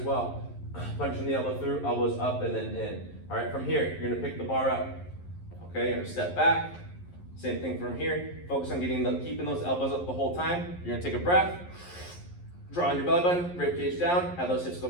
Punching the elbow through, elbows up and then in. All right, from here, you're gonna pick the bar up. Okay, you're gonna step back. Same thing from here. Focus on keeping those elbows up the whole time. You're gonna take a breath. Draw on your belly button, rib cage down, have those hips go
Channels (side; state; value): right; late; 11 ms